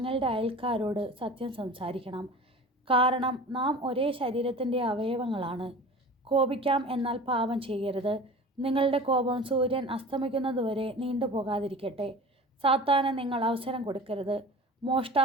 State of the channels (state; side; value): normal; both; correlation 0.38